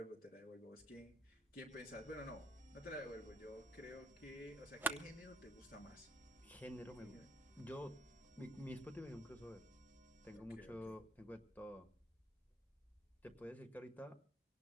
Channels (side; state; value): both; normal; correlation 0.66